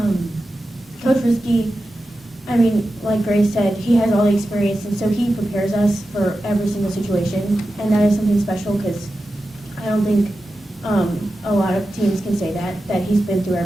Coach Rietzke, like Grace said, he has all the experience, and so he prepares us for every single situation, and that is something special because I don't think a lot of teams can say that he's been through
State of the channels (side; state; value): both; normal; correlation 0.92